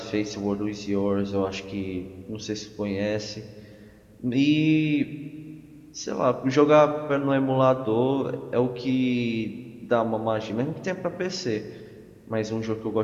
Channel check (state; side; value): identical; both; correlation 1.00